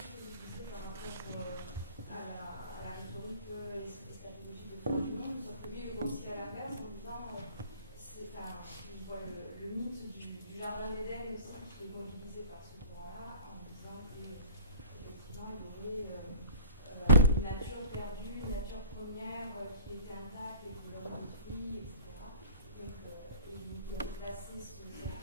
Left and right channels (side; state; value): both; inverted; correlation -0.43